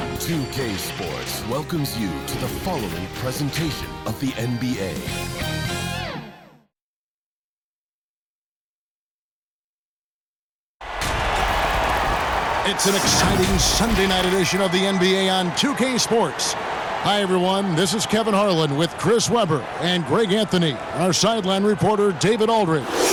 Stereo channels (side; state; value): both; identical; correlation 1.00